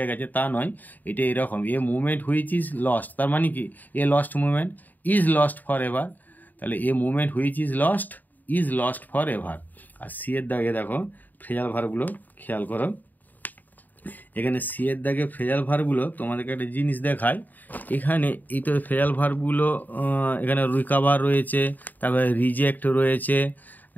গেছে, তা নয়, এটা এরকম a movement which is lost, তার মানে কি a lost movement, is lost for ever, তাহলে a movement which is lost for ever. আর সি এর দাগে দেখো ফ্রেজাল ভার্বগুলো খেয়াল করো, এখানে সি এর দাগে ফ্রেজাল ভার্বগুলো তোমাদেরকে একটা জিনিস দেখায়, এখানে এই তো ফ্রেজাল ভার্বগুলো এখানে রিকাভার রয়েছে, তারপরে রিজেক্ট রয়েছে,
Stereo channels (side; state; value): right; late; 0.085 ms